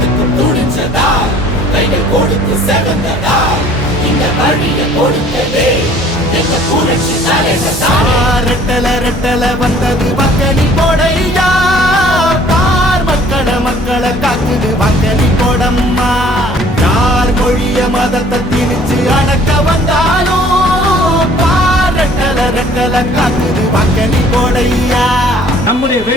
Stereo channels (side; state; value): both; normal; correlation 0.54